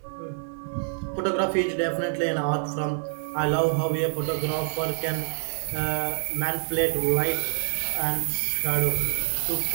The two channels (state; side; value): silent; left; 61 dB below the other